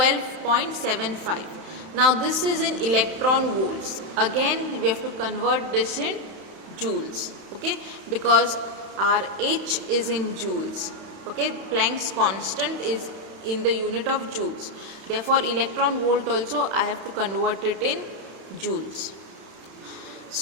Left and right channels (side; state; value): left; late; 31 ms